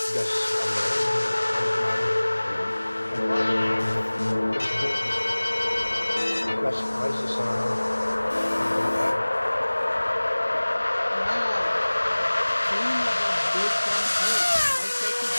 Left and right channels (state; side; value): inverted; both; correlation -1.00